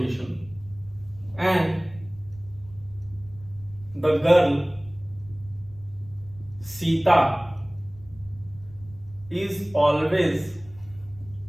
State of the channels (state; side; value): noise; left; rumble, 22 dB below the sound